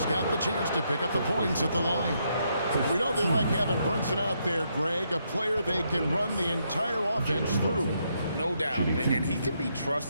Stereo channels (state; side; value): inverted; both; correlation -0.77